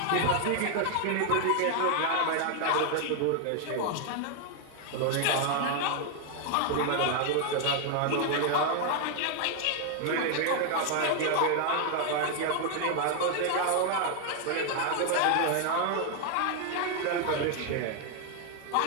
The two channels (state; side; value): different; both; correlation 0.00